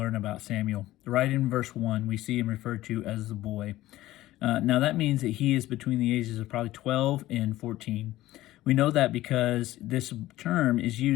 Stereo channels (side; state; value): right; quieter; 15.9 dB